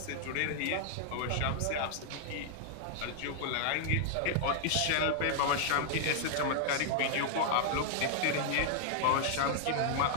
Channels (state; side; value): different; both; correlation 0.00